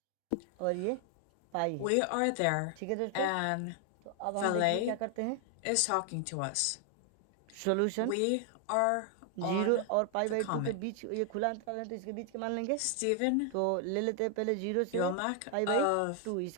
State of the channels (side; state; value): both; different; correlation 0.00